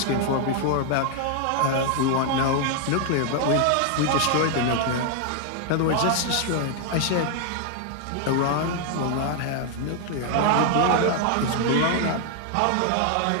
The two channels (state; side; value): different; both; correlation 0.00